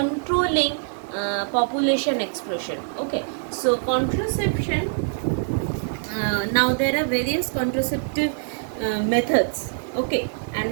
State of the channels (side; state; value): left; silent; digital silence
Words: population explosion. Okay, so contraception, now there are various contraceptive methods. Okay,